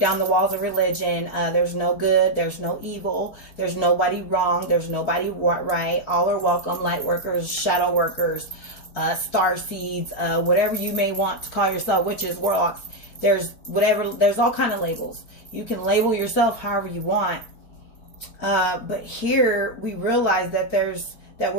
the walls of religion. There's no good, there's no evil, there's nobody wrong, there's nobody right. All are welcome. Light workers, shadow workers, star seeds, whatever you may want to call yourself, witches, warlocks. There's whatever, there's all kind of labels. You can label yourself however you want. But here we realize that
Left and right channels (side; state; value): right; late; 4.4 ms